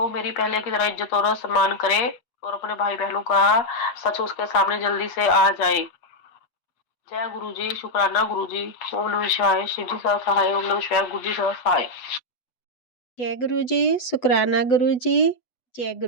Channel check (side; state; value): right; late; 8.1 ms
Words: मेरी पहले की तरह इज्जत और सम्मान करे और अपने भाई बहनों का सच उसके सामने जल्दी से आ जाए। जय गुरुजी, शुक्राना गुरुजी। ओम नमः शिवाय, शिव जी सदा सहाय। ओम नमः शिवाय, गुरु जी सदा सहाय। जय गुरुजी, शुक्राना गुरुजी। जय